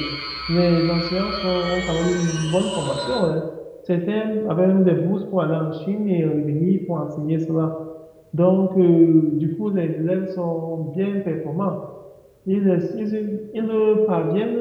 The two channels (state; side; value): identical; both; correlation 1.00